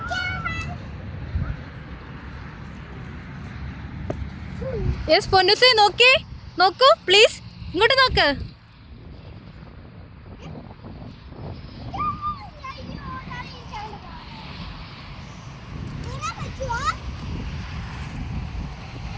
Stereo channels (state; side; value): identical; both; correlation 1.00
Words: യെസ് പൊന്നൂസേ, നോക്കൂ പ്ലീസ്. ഇങ്ങോട്ട് നോക്ക്.